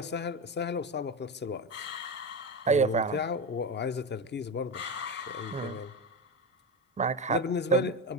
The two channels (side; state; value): both; normal; correlation 0.18